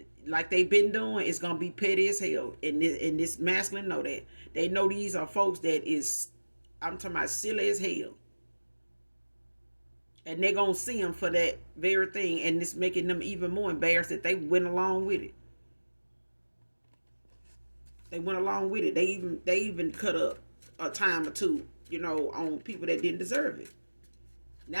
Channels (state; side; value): inverted; both; correlation -1.00